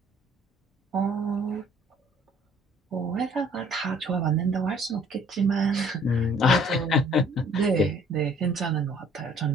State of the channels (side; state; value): both; normal; correlation 0.57